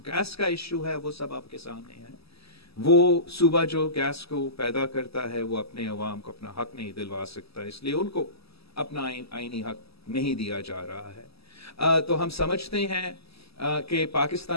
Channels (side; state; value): right; late; 0.77 ms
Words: गैस का इशू है वो सब आपके सामने है। وہ صوبہ جو گیس کو پیدا کرتا ہے وہ اپنے عوام کو اپنا حق نہیں دلوا سکتا، اس لیے ان کو اپنا آئینی حق نہیں دیا جا رہا ہے۔ تو ہم سمجھتے ہیں کہ